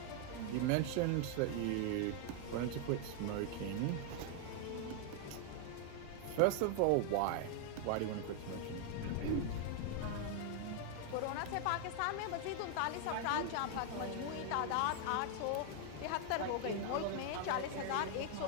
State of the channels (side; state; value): both; different; correlation 0.00